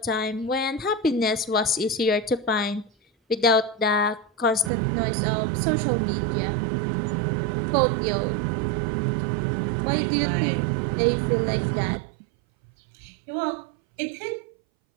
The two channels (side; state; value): left; drops out; at 4.7 s